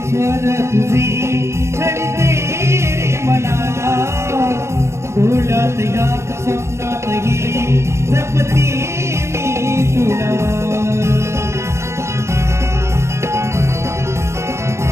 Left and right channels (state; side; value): late; left; 0.13 ms